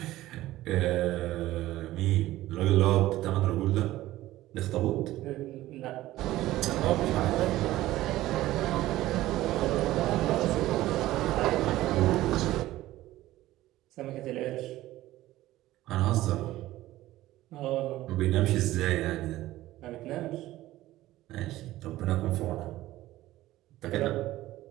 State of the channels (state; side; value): quieter; left; 15.9 dB